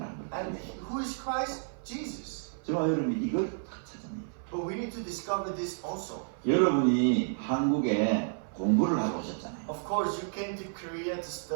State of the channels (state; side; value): silent; left; 56 dB below the other